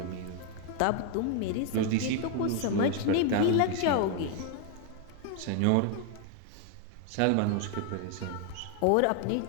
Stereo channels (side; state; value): both; different; correlation 0.00